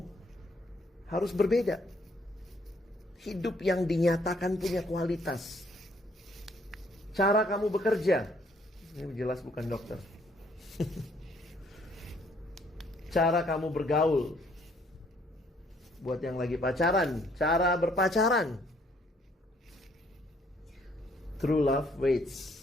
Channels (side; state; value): both; normal; correlation 0.65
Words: harus berbeda. Hidup yang dinyatakan punya kualitas. Cara kamu bekerja, ini jelas bukan dokter. Cara kamu bergaul, buat yang lagi pacaran, cara berpacaran. True love